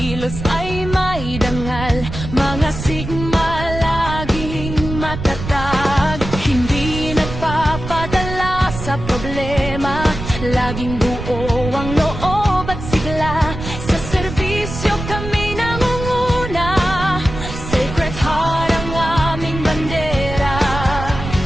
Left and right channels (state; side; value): noise; right; rumble, 8 dB below the sound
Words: ay may dangal, mga sigma laging matatag. Hindi nagpapadala sa problema, laging buo ang loob at sigla. Sa serbisyo kami nangunguna, Sacred Heart ang aming bandera.